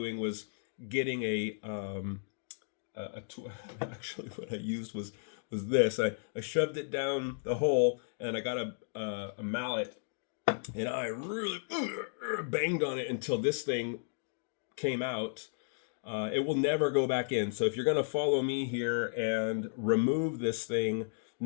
was getting actually what I used was this. I shoved it down the hole, and I got a mallet, and I really banged on it until this thing came out. It will never go back in. So if you're going to follow me here and remove this thing,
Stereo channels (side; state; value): right; silent; digital silence